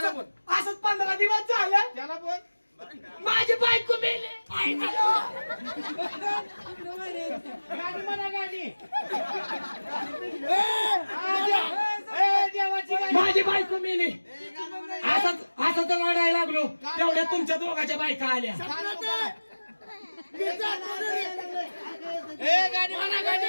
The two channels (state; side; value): inverted; both; correlation -1.00